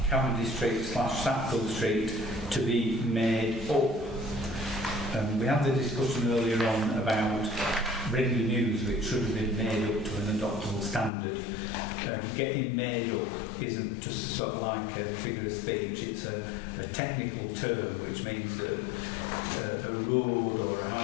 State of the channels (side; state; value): right; drops out; at 11.1 s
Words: Cavendish Street / Sackville Street to be made up. We had the discussion earlier on about bringing news which should have been made up to an adoptable standard. Getting made up isn't just sort of like a figure of speech, it's a technical term which means that a road or a